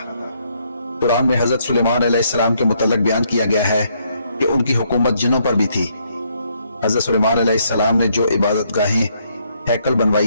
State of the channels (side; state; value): both; inverted; correlation -0.72